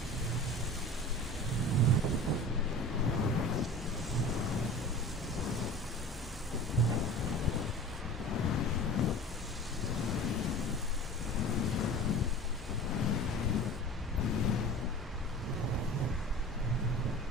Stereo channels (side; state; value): both; normal; correlation 0.37